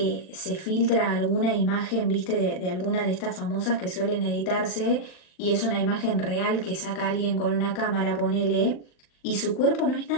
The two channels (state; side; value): late; right; 39 ms